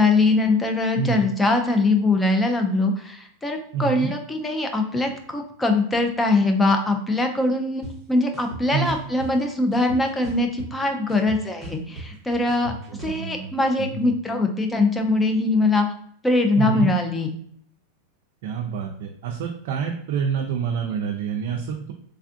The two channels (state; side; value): normal; both; correlation 0.59